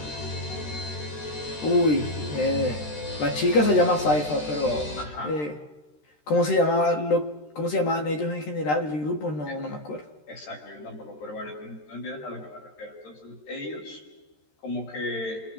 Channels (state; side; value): late; right; 13 ms